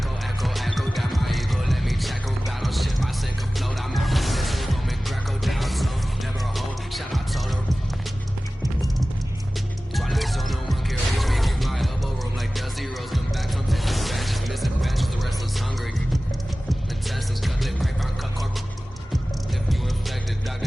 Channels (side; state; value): both; normal; correlation 0.97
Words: down my ego, let me check on battle shit, my sink afloat, I'm out of this, Roman Greco down slow, never a hold, shout out to her. Twilight zone, no one can reach me, through my elbow room like Dusty Rose, come back from taking batches, missing batches, the restless hungry. Intestines cut lip, grapevine, cut corp. If you infected,